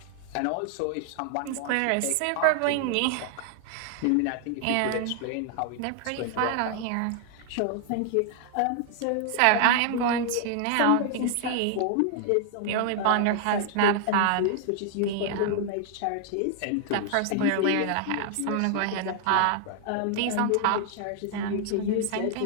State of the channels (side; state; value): both; different; correlation 0.00